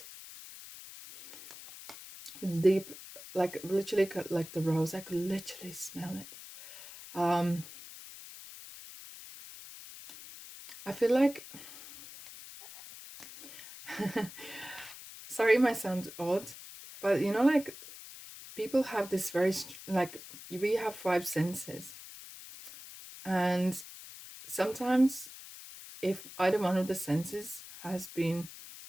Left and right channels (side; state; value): left; noise; hiss, 15 dB below the sound